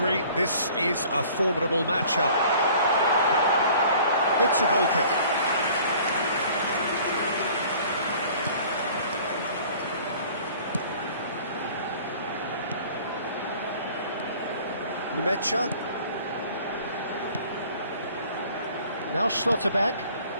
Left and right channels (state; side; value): inverted; both; correlation -0.50